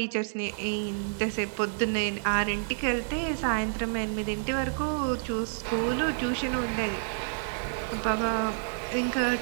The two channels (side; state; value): left; silent; digital silence